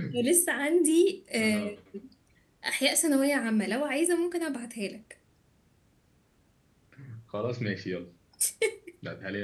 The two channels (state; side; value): identical; both; correlation 1.00